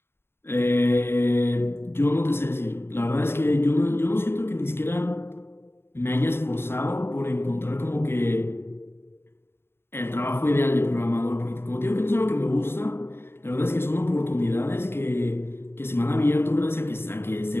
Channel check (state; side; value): late; right; 0.11 ms